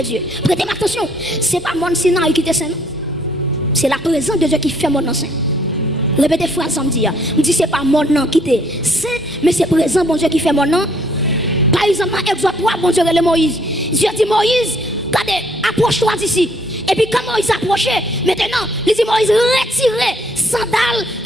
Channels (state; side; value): normal; both; correlation 0.64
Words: Dieu. Prêtez attention, ce n'est pas mon Sinaï qui était saint. C'est la présence de Dieu qui fait mon nom saint. Répétez phrase ça me dit. Je dis, ce n'est pas mon nom qui était saint, mais c'est présent, bon Dieu, qui fait mon nom. Par exemple, dans Exode 3, bon Dieu, le Moïse. Dieu dit, Moïse, regardez, approche-toi d'ici. Et puis quand Moïse s'approchait, maintenant, il dit Moïse, retirez sandales